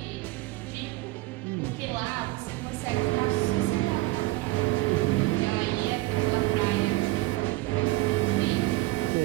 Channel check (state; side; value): quieter; left; 19.4 dB